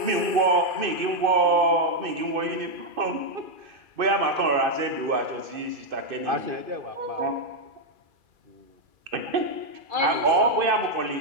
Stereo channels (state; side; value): late; left; 2.6 ms